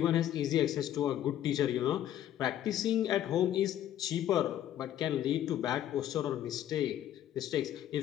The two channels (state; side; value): quieter; right; 11.6 dB